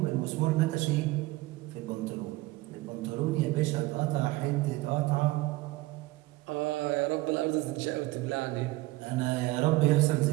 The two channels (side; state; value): left; quieter; 19.7 dB